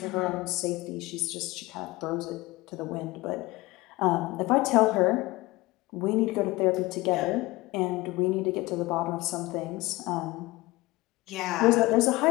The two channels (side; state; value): right; quieter; 20.6 dB